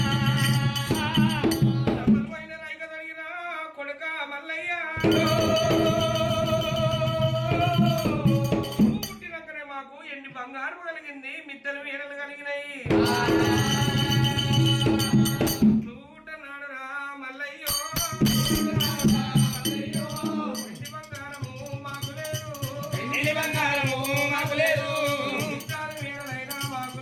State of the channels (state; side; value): identical; both; correlation 1.00